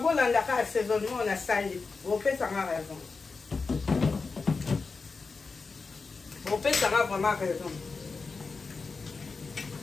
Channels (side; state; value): right; quieter; 4.4 dB